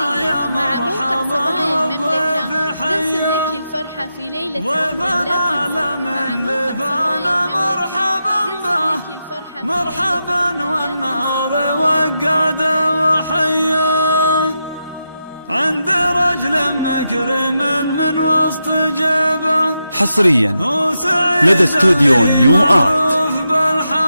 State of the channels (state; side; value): inverted; both; correlation -0.87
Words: يا مرحبا بالضيف حيا نرسم لك الفرحة في ليلة عمر لا تنسى. من لفانا مرحبا به مرحبا والنار وقاده وحيا عند رجل مكرم من وسط جيبه حصريا لدى استوديو نيو آرت.